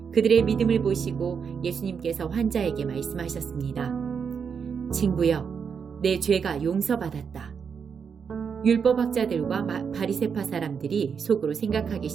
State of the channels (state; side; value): quieter; left; 6.5 dB